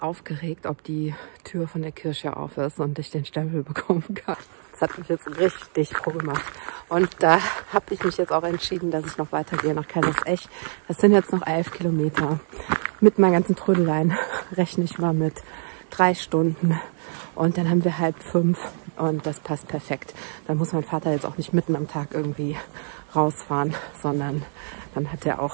ob die Tür von der Kirche auf ist und ich den Stempel bekommen kann. Das hat mich jetzt richtig froh gemacht. Und da habe ich mich jetzt auch entschieden, dass ich noch weitergehe nach Kaisersesch. Das sind jetzt noch 11 Kilometer. Mit meinen ganzen Trödeleien rechne ich mal mit 3 Stunden. Und dann haben wir 4:30 und das passt perfekt. Dann muss mein Vater jetzt auch nicht mitten am Tag irgendwie rausfahren, sondern dann hat er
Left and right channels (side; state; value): left; silent; 62 dB below the other